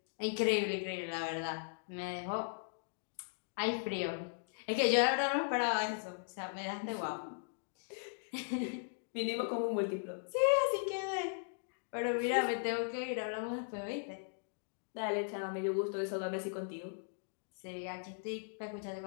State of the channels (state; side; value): silent; right; digital silence